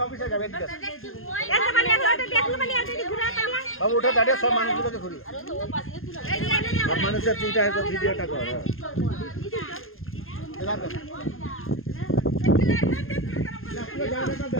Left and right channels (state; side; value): late; right; 0.60 ms